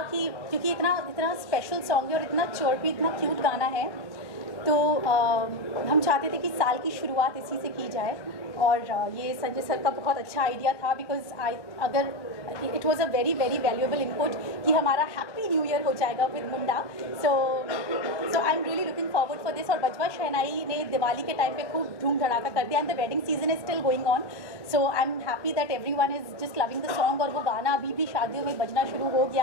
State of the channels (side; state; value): right; late; 1.1 ms